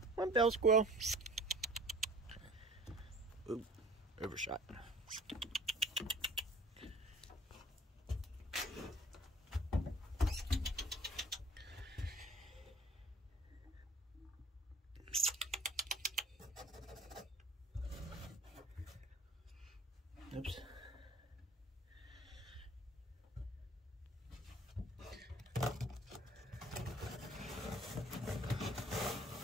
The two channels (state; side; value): normal; both; correlation 0.49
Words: One bell squirrel. Ooh, overshot. Oops.